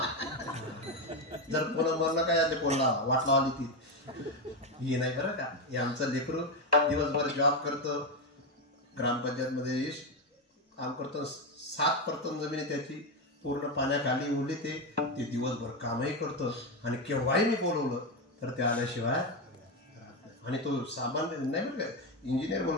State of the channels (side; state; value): both; normal; correlation 0.10